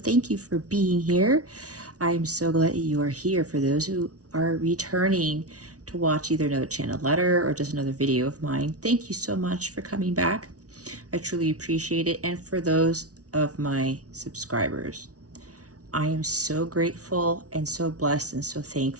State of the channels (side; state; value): left; late; 0.67 ms